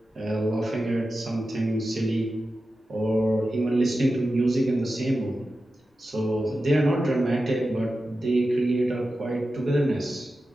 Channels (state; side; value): normal; both; correlation 0.92